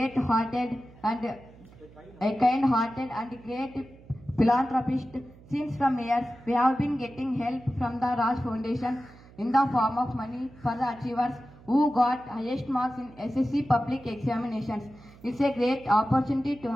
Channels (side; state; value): right; noise; hum, 22 dB below the sound